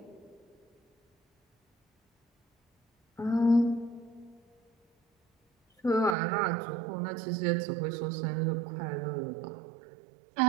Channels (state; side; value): drops out; left; at 6.2 s